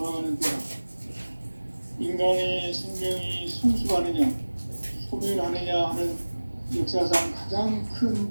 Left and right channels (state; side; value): inverted; both; correlation -1.00